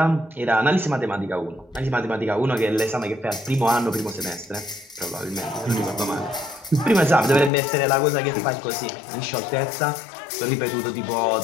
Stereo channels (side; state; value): right; drops out; at 7.5 s